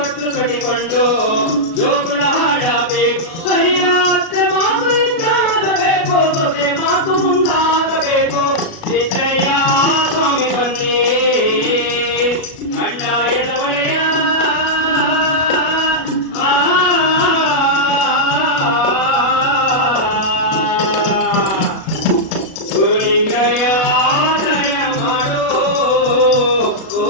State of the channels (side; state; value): right; late; 37 ms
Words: ಕಟ್ಟಿಕೊಂಡು ಜೋಗುಳ ಹಾಡಬೇಕು ಹರಿಯಾತ್ರೆ ಮಾತು ಇದ್ದಾಗಬೇಕು ಸೊಸೆ ಮಾತು ಮುಂದಾಗಬೇಕು ಸಿದ್ದಯ್ಯ ಸ್ವಾಮಿ ಬನ್ನಿ ಕಂಠಾಯದ ಒಡೆಯ ಗುರುಲಿಂಗಯ್ಯ ದಯ ಮಾಡೋ